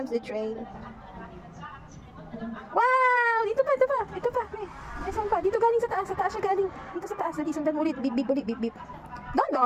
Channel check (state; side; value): identical; both; correlation 1.00